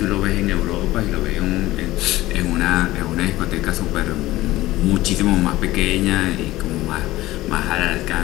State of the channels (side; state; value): right; quieter; 17.2 dB